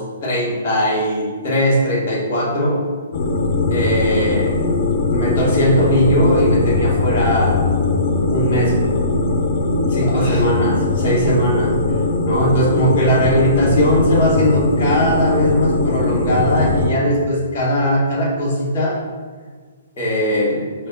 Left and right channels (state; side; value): inverted; both; correlation -0.46